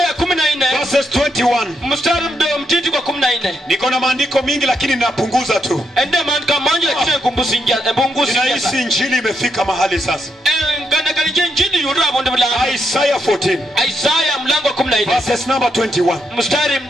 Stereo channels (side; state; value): both; normal; correlation 0.80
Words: verses 21. Niko na maandiko mingi lakini ninapunguza tu. Ninahisi injili imefika mahali sasa. Isaiah 14 verses number 21.